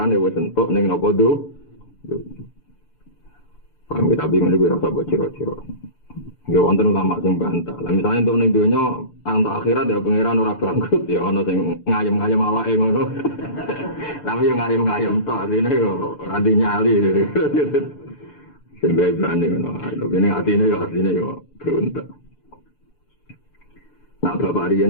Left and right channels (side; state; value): right; late; 6.8 ms